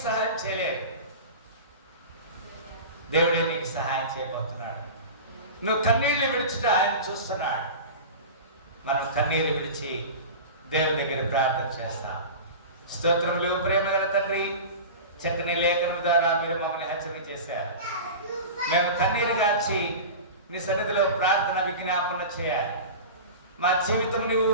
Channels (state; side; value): inverted; both; correlation -0.31